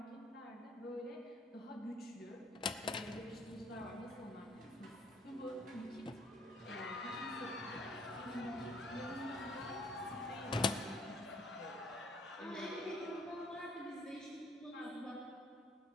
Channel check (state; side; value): normal; both; correlation 0.61